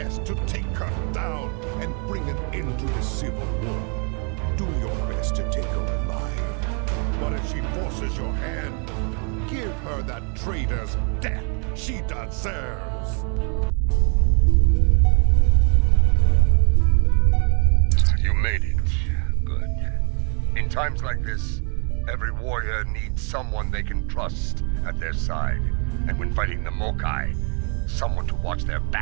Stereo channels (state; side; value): quieter; left; 38.6 dB